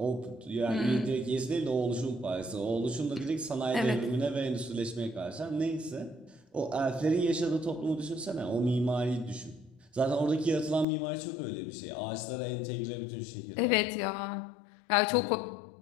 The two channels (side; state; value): right; drops out; at 10.9 s